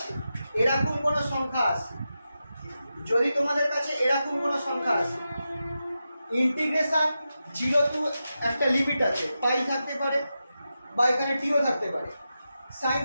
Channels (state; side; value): inverted; both; correlation -0.90